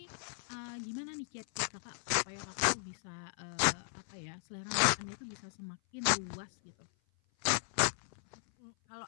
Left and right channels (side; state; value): right; silent; 53 dB below the other